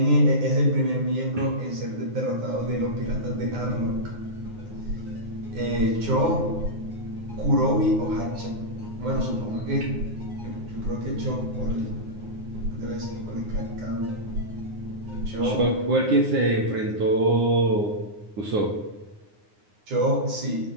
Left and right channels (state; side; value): late; left; 9.7 ms